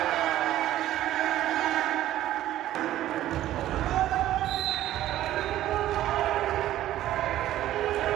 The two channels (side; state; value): left; quieter; 13.5 dB